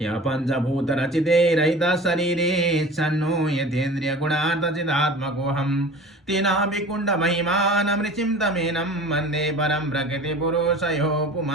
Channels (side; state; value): both; normal; correlation 0.40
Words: या पंचभूतरचिते रहितः शरीरे सन्नो यतेन्द्रियगुणार्थचिदात्मकोऽहं तेनाभिकुण्डमहिमानं तमेनं वन्दे परं प्रकृतिपुरुषयो